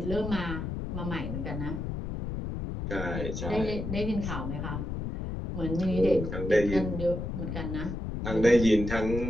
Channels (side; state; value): left; noise; rumble, 4 dB below the sound